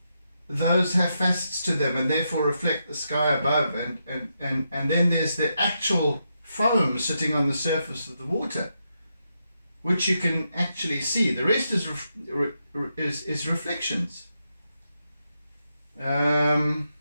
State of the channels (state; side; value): inverted; both; correlation -0.83